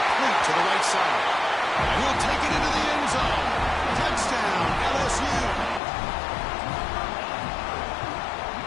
to the right side. And he'll take it into the end zone. Touchdown, LSU.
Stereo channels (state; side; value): drops out; right; at 5.8 s